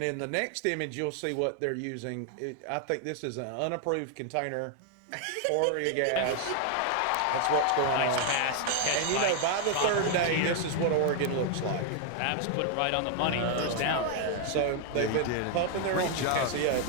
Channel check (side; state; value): both; different; correlation 0.00